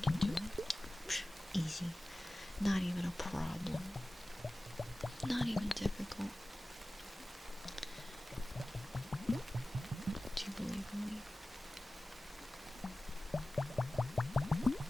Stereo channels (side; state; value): both; normal; correlation 0.97